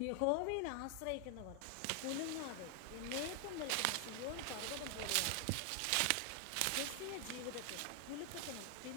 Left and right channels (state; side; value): different; both; correlation 0.00